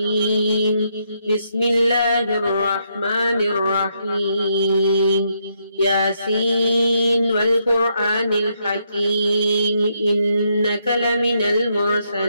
بسم الله الرحمن الرحيم. ياسين والقرآن الحكيم إنك لمن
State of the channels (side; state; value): both; inverted; correlation -0.77